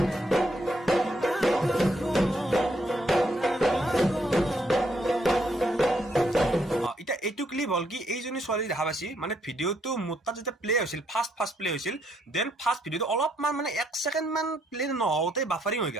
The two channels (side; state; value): both; normal; correlation 0.74